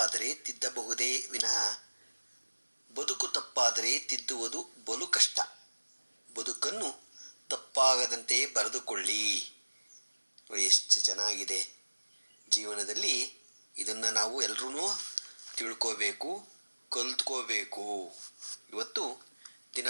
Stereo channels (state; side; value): inverted; both; correlation -1.00